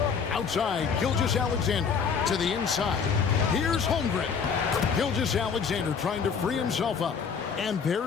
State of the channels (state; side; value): quieter; right; 6.2 dB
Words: Outside, Gilgeous-Alexander to the inside. Here's Holmgren. Gilgeous-Alexander trying to free himself up. And